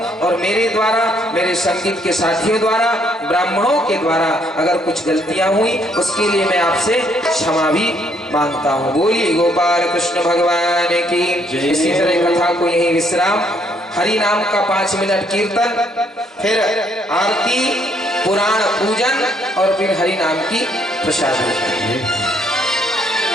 और मेरे द्वारा, मेरे संगीत के साथियों द्वारा, ब्राह्मणों के द्वारा अगर कुछ गलतियां हुई उसके लिए मैं आपसे क्षमा भी मांगता हूं। बोलिए गोपाल कृष्ण भगवान की। इसी तरह कथा को यही विश्राम, हरि नाम का 5 मिनट कीर्तन, फिर आरती, पुराण पूजन और फिर हरि नाम की प्रसाद।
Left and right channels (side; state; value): both; normal; correlation 0.69